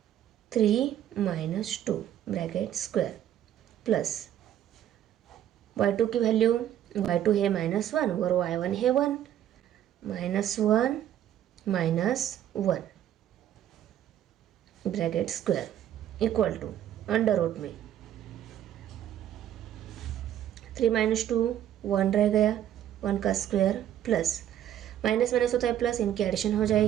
3 minus 2 bracket square plus y2 की वैल्यू, y2 है -1 और y1 है 1, -1 -1 bracket square equal to under root में 3 माइनस 2 1 रह गया, 1 का स्क्वायर प्लस माइनस माइनस होता है प्लस, इनकी एडिशन हो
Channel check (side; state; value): left; quieter; 11.2 dB